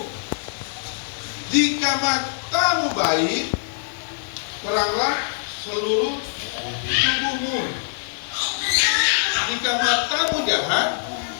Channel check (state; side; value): silent; right; digital silence